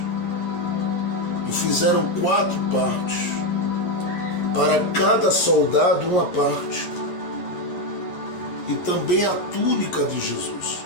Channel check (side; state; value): right; late; 11 ms